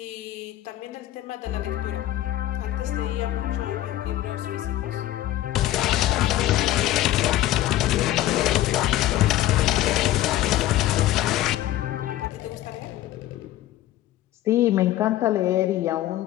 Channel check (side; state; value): right; quieter; 14.4 dB